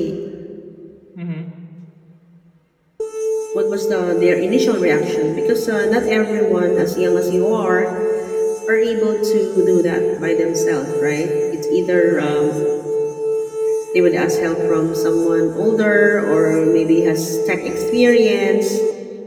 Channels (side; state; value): both; identical; correlation 1.00